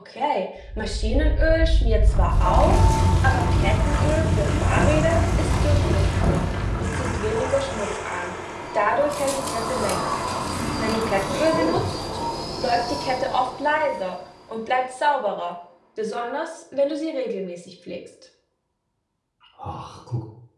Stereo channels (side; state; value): both; identical; correlation 1.00